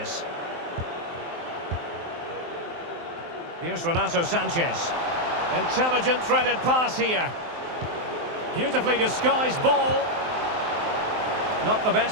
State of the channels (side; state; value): left; late; 23 ms